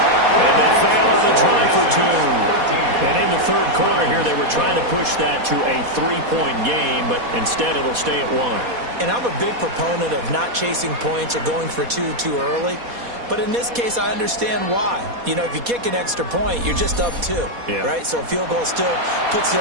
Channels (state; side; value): late; left; 4.2 ms